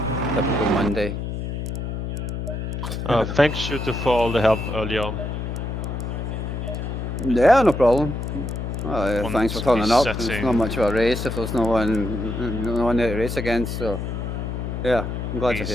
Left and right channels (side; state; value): left; noise; hum, 4 dB below the sound